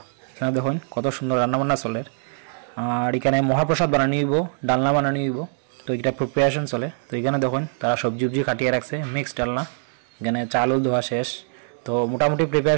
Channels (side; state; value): left; silent; 62 dB below the other